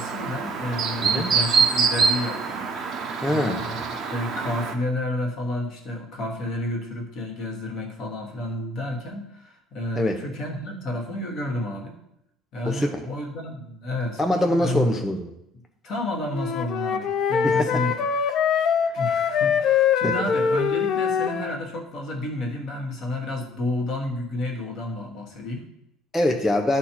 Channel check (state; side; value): normal; both; correlation 0.61